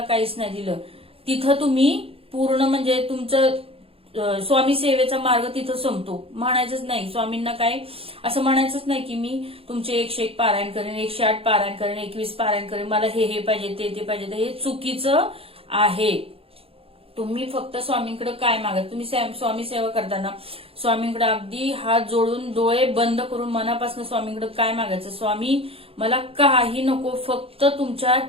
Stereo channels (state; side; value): late; left; 0.27 ms